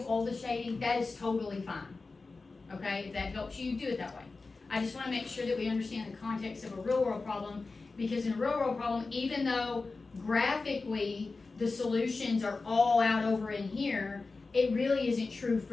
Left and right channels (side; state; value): right; quieter; 3.9 dB